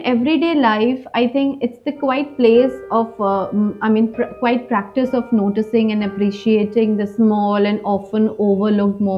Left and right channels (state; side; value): identical; both; correlation 1.00